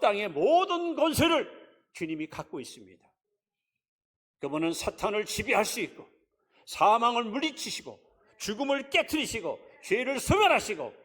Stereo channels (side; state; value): both; identical; correlation 1.00